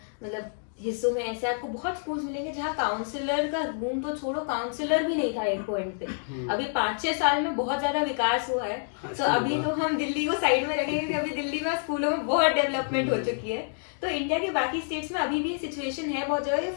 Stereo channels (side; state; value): right; silent; digital silence